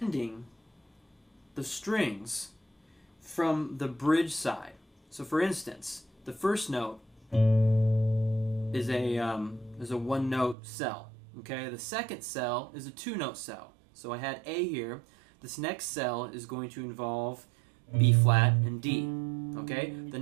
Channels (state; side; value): drops out; left; at 10.6 s